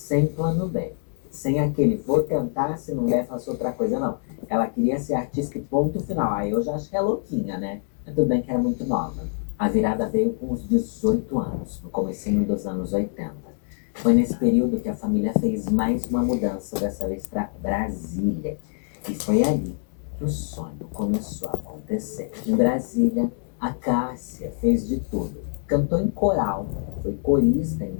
plano B, sem aquele vou tentar, se não der faço outra coisa, não. Ela queria ser artista e ponto final. Aí eu já acho que é louquinha, né? Mas tudo bem que era muito nova. A virada veio com uns 18 anos, no comecinho dos anos 80. Foi nesse período que a família fez mais uma mudança, dessa vez para Brasília. E foi ali que o sonho começou a acontecer. Em Brasília, a Cássia fez de tudo. Cantou em coral, foi corista em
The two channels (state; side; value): silent; right; 60 dB below the other